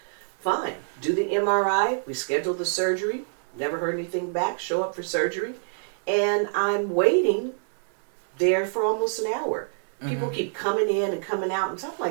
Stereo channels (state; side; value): silent; left; digital silence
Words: Fine. Do the MRI. We schedule the surgery. Never heard anything back. Show up for surgery. And I'm waiting there for almost an hour. People keep coming in and coming out, and so I'm